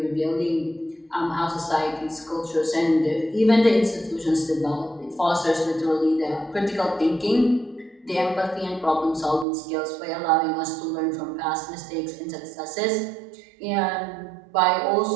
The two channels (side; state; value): left; drops out; at 9.5 s